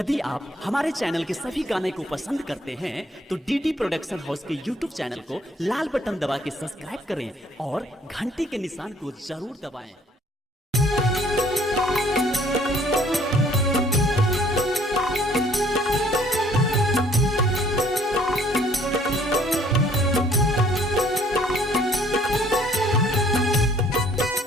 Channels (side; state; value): both; normal; correlation 0.60